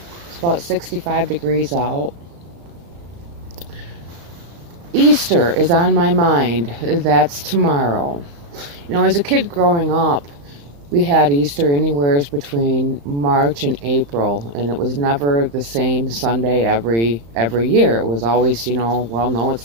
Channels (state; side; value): late; left; 35 ms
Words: It's about 65 degrees out. Easter is on my mind. That's tomorrow. As a kid growing up, we had Easter anywhere between March and April, and it was never the same Sunday every year. It was always, well, no,